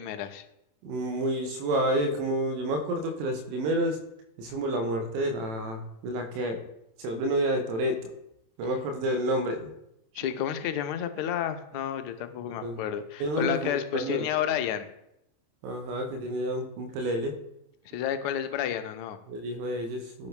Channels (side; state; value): left; late; 27 ms